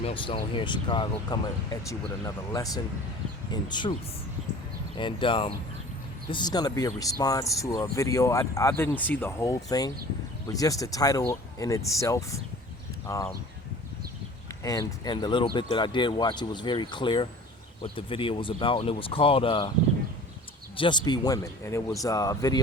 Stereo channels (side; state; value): both; normal; correlation 0.44